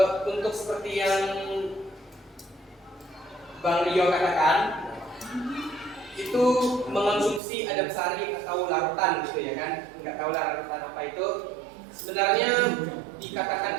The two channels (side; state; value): left; drops out; at 7.4 s